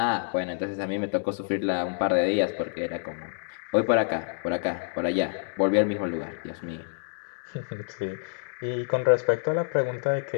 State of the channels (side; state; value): right; silent; digital silence